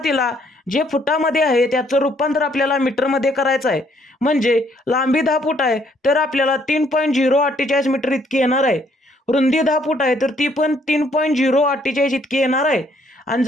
जे फुटामध्ये आहे त्याचं रूपांतर आपल्याला मीटरमध्ये करायचं आहे. म्हणजे लांबी 10 फूट आहे तर आपल्याला 3.048 मीटर इतकी येणार आहे. रुंदी 10 फूट आहे तर ती पण 3.048 इतकी येणार आहे. आणि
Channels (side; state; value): both; normal; correlation 0.67